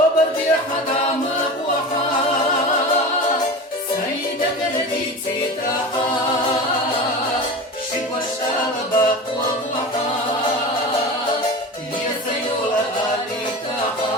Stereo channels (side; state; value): both; normal; correlation 0.31